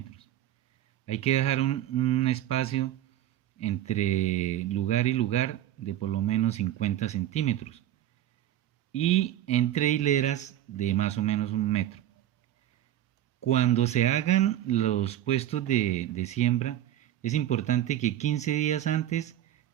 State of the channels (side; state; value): left; quieter; 12.5 dB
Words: Hay que dejar un espacio entre lugar y lugar de por lo menos 50 centímetros y entre hileras de más o menos 1 metro. Cuando se hagan los puestos de siembra, es importante que 15 días antes